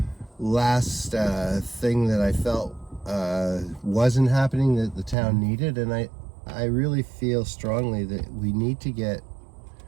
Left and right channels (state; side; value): drops out; left; at 5.2 s